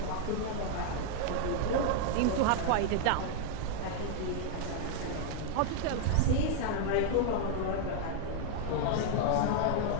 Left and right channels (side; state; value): both; different; correlation 0.00